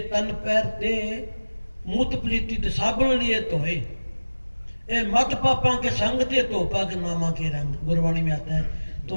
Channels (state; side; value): inverted; both; correlation -1.00